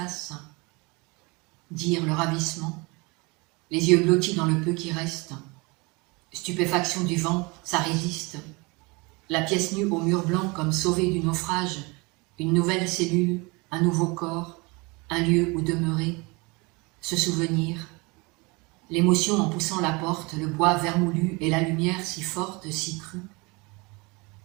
dire le ravissement, les yeux blottis dans le peu qui reste, stupéfaction du vent, ça résiste, la pièce nue au mur blanc comme sauvée du naufrage, une nouvelle cellule, un nouveau corps, un lieu où demeurer, se souvenir, l'émotion en poussant la porte, le bois vermoulu et la lumière si forte, si crue.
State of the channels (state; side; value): quieter; left; 26.9 dB